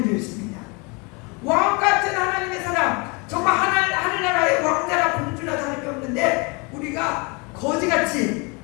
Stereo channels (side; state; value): right; quieter; 29.9 dB